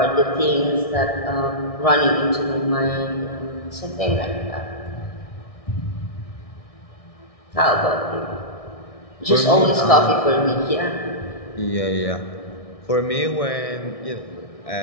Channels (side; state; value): right; late; 1.6 ms